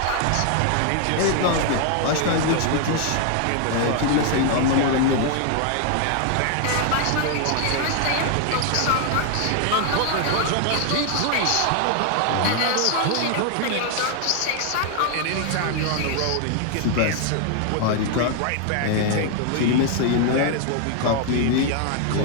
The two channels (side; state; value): both; different; correlation 0.00